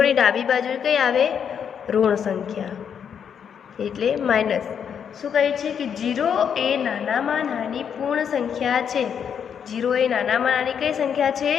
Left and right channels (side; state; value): right; quieter; 7.7 dB